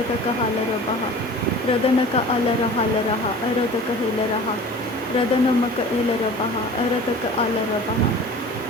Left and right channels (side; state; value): both; normal; correlation 0.41